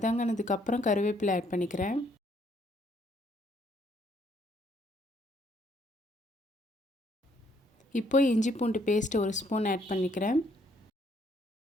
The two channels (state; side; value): normal; both; correlation 0.68